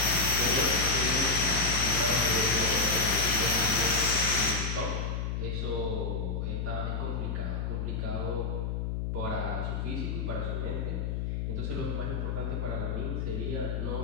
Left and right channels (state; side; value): noise; left; hum, 1 dB below the sound